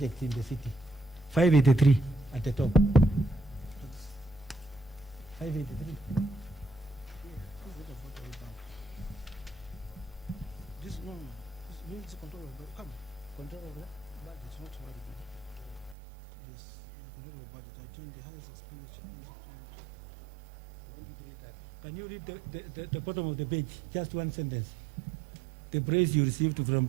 in the city. 583 at the top. 583. This no, this means control of control of budget, not very good. Yes, control of budget. I joined the highest expenditure. Can you read the bottom of the page? Just one sentence. The praise you received from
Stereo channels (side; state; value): left; drops out; at 16.0 s